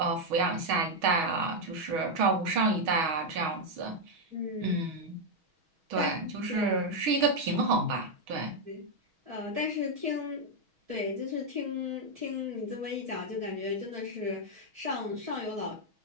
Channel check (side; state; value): left; late; 6.3 ms